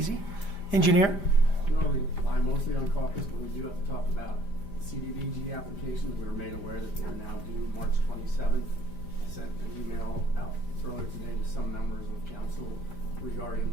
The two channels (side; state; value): right; late; 5.0 ms